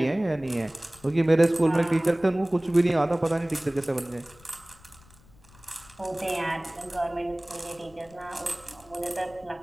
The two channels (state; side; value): noise; left; rumble, 26 dB below the sound